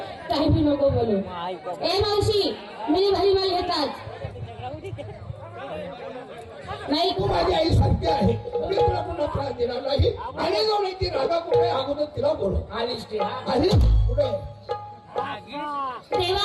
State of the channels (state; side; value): identical; both; correlation 1.00